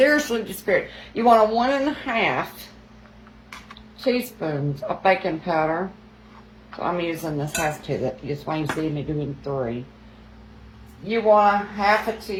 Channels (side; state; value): both; identical; correlation 1.00